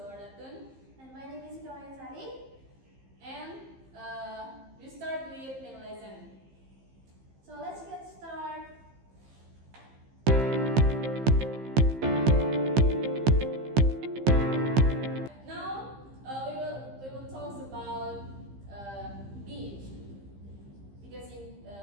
And my name is Kawayan Sari. And we start with main lesson. So let's get started. Now we will talk about beach because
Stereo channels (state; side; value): late; left; 15 ms